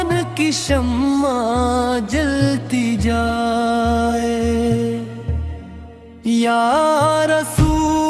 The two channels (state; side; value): identical; both; correlation 1.00